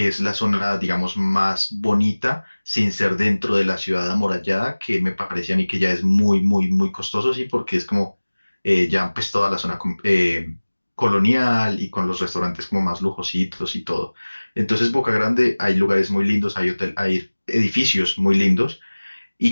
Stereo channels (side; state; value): both; inverted; correlation -1.00